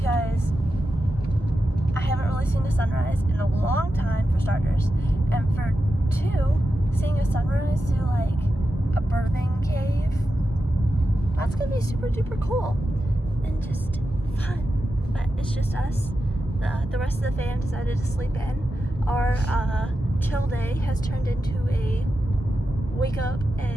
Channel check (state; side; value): normal; both; correlation 0.90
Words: I haven't really seen the sunrise in a long time, for starters, and for 2, seeing a sunrise through like a birthing cave, that's gonna be super duper cool and just fun. But it's just us. The rest of the fam decided to sleep in. our chill day has turned into a wake up